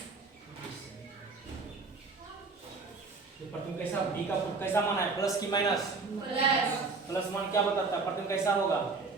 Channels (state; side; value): quieter; left; 4.2 dB